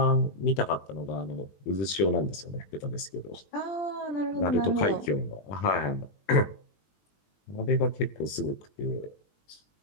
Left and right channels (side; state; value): right; late; 20 ms